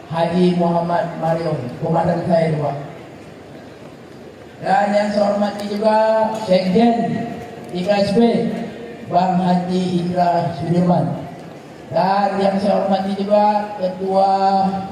Haji Muhammad Marion, komandan saya Pak. Dan yang saya hormati juga Sekjen IKSB Bang Haji Indra Sudirman. Dan yang saya hormati juga Ketua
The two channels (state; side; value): identical; both; correlation 1.00